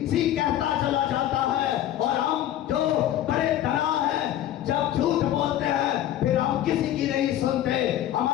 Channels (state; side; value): quieter; right; 12.2 dB